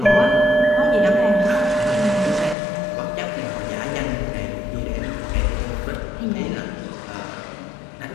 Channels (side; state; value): right; drops out; at 2.6 s